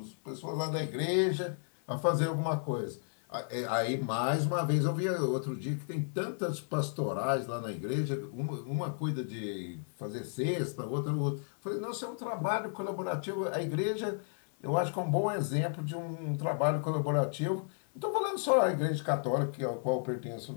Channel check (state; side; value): silent; right; 56 dB below the other